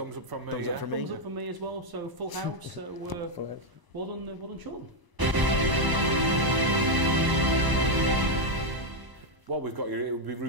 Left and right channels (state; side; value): late; left; 1.0 ms